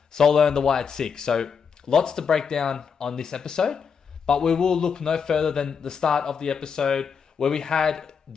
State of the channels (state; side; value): quieter; right; 6.3 dB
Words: Solo and the Wyatt Six. So lots to break down on this episode, but we will look no further than the start of the episode where we had